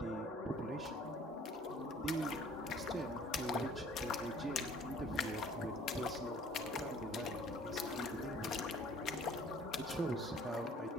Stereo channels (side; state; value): both; normal; correlation 0.53